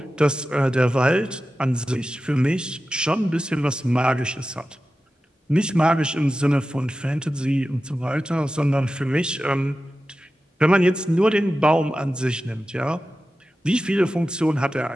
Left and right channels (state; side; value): normal; both; correlation 0.93